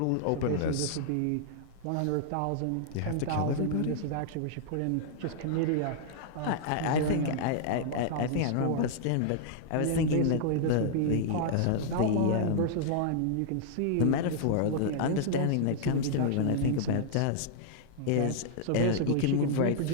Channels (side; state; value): both; different; correlation -0.01